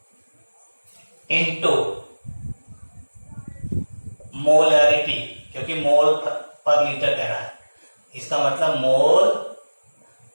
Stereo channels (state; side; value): inverted; both; correlation -1.00